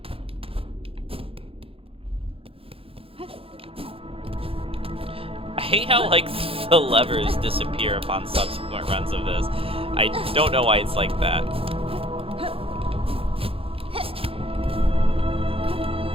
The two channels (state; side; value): late; left; 0.27 ms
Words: I hate how, like, the levers disappear upon subsequent runs of this. I don't know why it's like that.